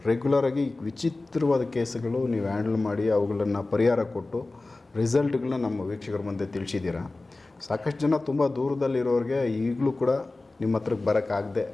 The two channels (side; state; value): right; quieter; 3.2 dB